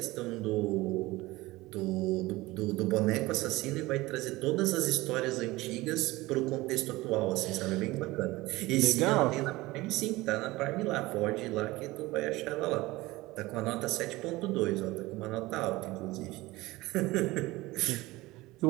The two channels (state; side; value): quieter; left; 19.8 dB